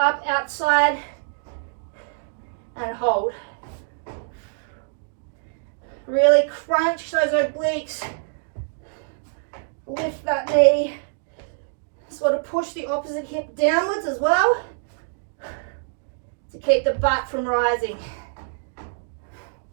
outside and hold. Really crunch those obliques. Lift that knee. Sort of push the opposite hip downwards as well to keep the butt from rising.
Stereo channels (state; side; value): silent; left; digital silence